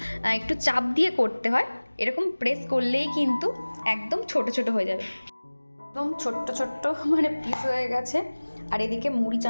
একটু চাপ দিয়ে করতে হয়, এরকম প্রেস করলেই কিন্তু একদম ছোট ছোট হয়ে যাবে, একদম ছোট্ট ছোট্ট মানে পিস হয়ে গেছে। আর এদিকে মুড়ি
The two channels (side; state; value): both; inverted; correlation -1.00